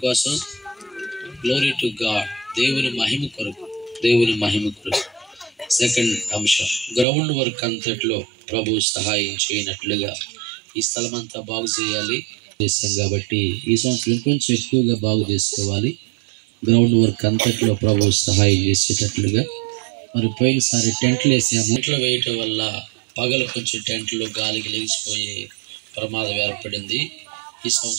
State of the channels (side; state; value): left; drops out; at 7.1 s